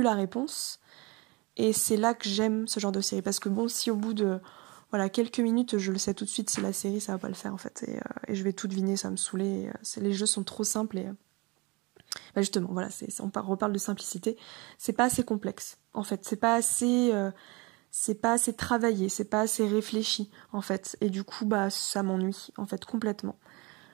la réponse. Et c'est là que j'aime ce genre de série parce que si au bout de quelques minutes je le sais tout de suite si la série ça va pas le faire en fait et je vais tout deviner, ça va me saouler. Les jeux sont trop simples et justement voilà, on reparle de simplicité. C'est pas assez complexe en fait, c'est pas assez travaillé, c'est pas assez réfléchi en fait et du coup ça m'ennuie en fait complètement.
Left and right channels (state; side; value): quieter; left; 26.1 dB